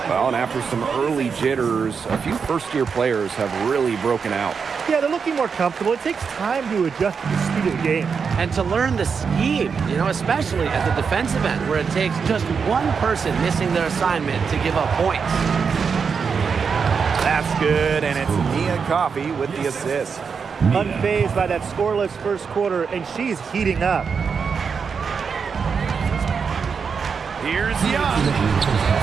Well, and after some early jitters, a few first-year players have really broken out. Yeah, they're looking more comfortable. It takes time to adjust to the speed of the game. And to learn the scheme, especially at the defensive end, where it takes just one person missing their assignment to give up points. That's good, and it's Nia Coffey with the assist. Unfazed by that scoreless first quarter, and she's heating up. Here's Young.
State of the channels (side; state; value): left; quieter; 5.9 dB